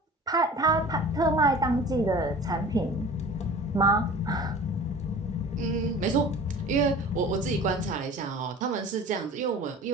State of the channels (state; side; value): normal; both; correlation 0.41